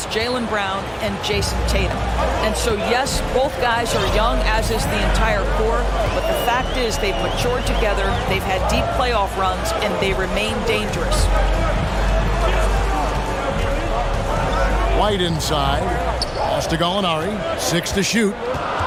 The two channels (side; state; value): both; identical; correlation 1.00